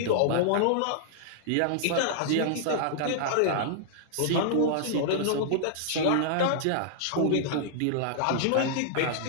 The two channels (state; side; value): different; both; correlation -0.01